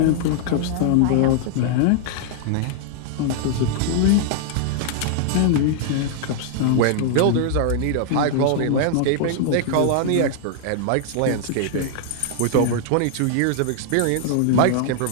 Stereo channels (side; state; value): both; different; correlation -0.01